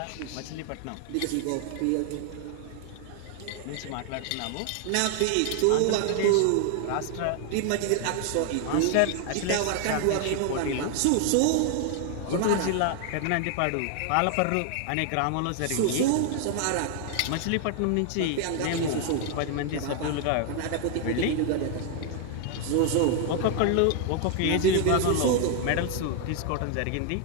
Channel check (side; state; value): both; different; correlation 0.00